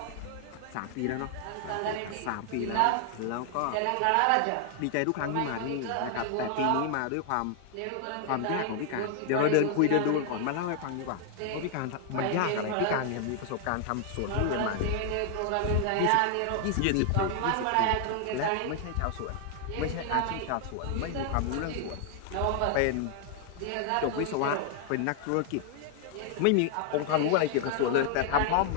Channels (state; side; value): different; both; correlation 0.00